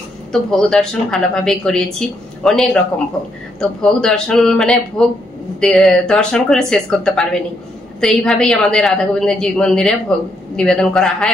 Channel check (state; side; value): normal; both; correlation 0.76